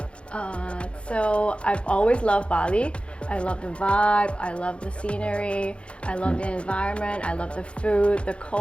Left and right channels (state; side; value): late; right; 0.058 ms